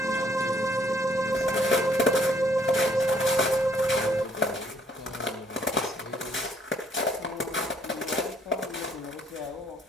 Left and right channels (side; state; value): both; normal; correlation 0.64